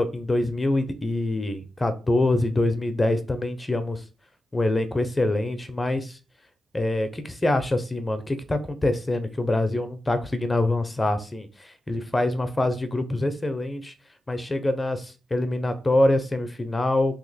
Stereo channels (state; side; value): normal; both; correlation 0.92